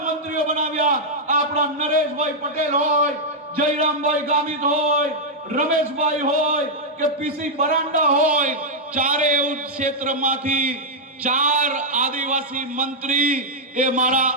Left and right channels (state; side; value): normal; both; correlation -0.04